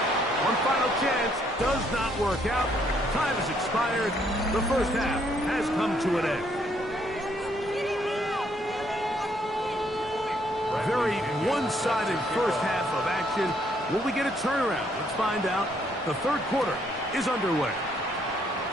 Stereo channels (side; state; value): both; normal; correlation 0.69